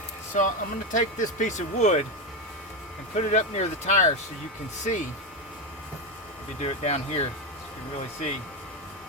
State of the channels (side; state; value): both; normal; correlation 0.11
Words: so I'm going to take this piece of wood and put it up near the tire so you can see. If you do it down here, you can really see.